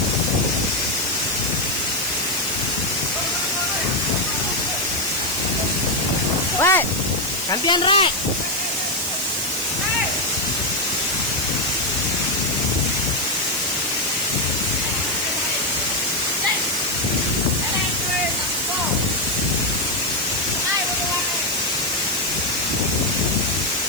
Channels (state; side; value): noise; left; hiss, 8 dB below the sound